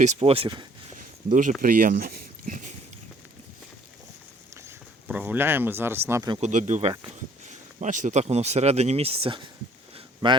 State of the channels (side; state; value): both; normal; correlation 0.59